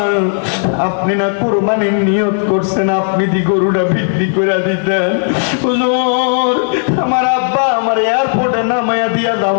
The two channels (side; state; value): right; silent; digital silence